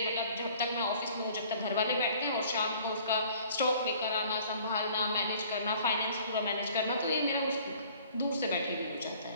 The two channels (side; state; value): both; inverted; correlation -0.53